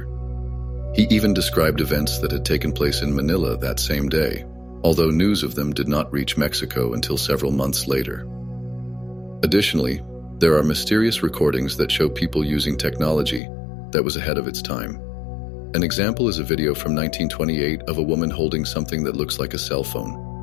He even described events that had taken place in Manila that same day, although news of them did not reach Mexico until several months later. Additionally, there are mysterious recordings that show people using technology that was ahead of its time. An example is a video from 1928 of a woman holding something that looks like a cell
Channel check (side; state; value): right; drops out; at 13.4 s